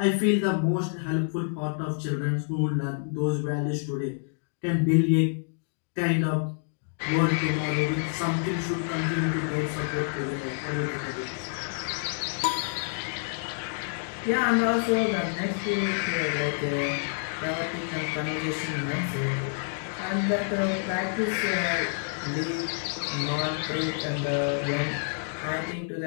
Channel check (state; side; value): silent; right; digital silence